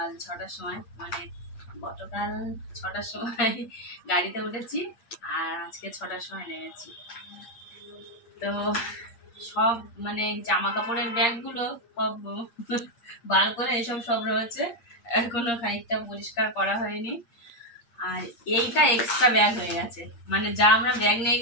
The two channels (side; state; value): right; late; 8.6 ms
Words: 6টার সময়, মানে গতকাল 6টার সময় গাড়িতে উঠেছি আর আজকে 6টার সময় নেমেছি। তো সব মানে জামা কাপড়ের ব্যাগগুলো সব বার করে এসব সব রয়েছে, এখনো খানিকটা পরিষ্কার করা হয়নি। আর এইটা এক্সট্রা ব্যাগ হয়ে গেছে, মানে যা আমরা ব্যাগ নিয়ে